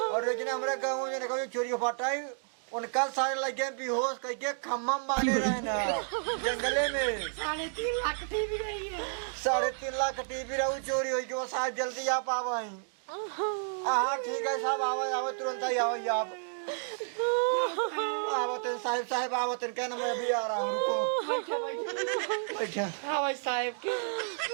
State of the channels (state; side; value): silent; left; digital silence